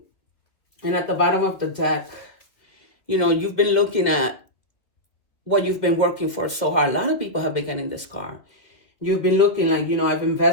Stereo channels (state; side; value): late; right; 2.2 ms